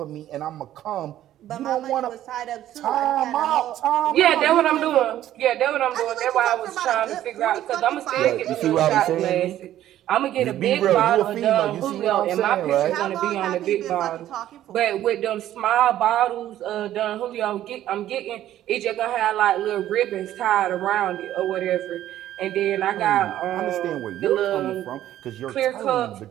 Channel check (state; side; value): quieter; left; 12.6 dB